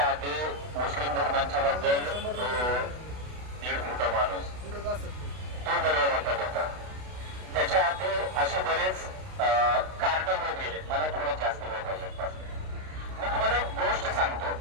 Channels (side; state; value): left; late; 32 ms